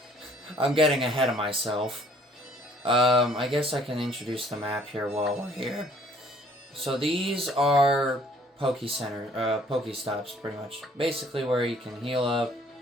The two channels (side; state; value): both; normal; correlation 0.59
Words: I'm getting ahead of myself. I guess I can introduce the map here while we're here. So these are Pokestops, pretty much. Basically where you can heal up,